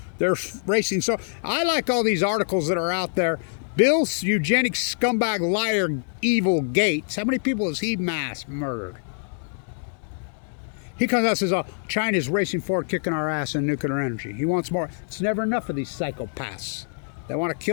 They're racing. So I like all these articles that are out there. Bill, eugenics, scumbag, liar, evil Gates. How many people has he mass murdered? He comes out and says, oh, China's racing forward, kicking our ass in nuclear energy. He wants more. It's never enough of these psychopaths. They want to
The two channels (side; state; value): right; silent; digital silence